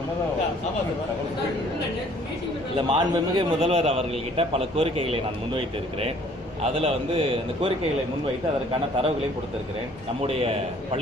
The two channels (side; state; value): both; normal; correlation 0.57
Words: இல்லை, மாண்புமிகு முதல்வர் அவர்கள்கிட்ட பல கோரிக்கைகளை நான் முன்வைத்து இருக்கிறேன். அதில் அந்த கோரிக்கைகளை முன்வைத்து அதற்கான தரவுகளையும் கொடுத்திருக்கிறேன். நம்முடைய